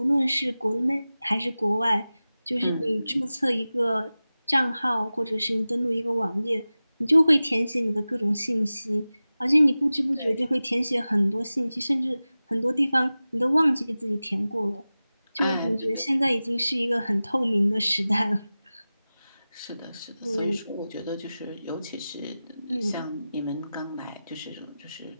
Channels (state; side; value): inverted; both; correlation -0.96